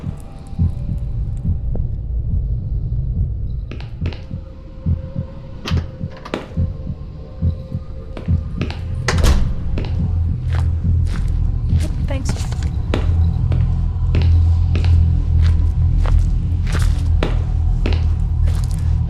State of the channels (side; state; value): both; identical; correlation 1.00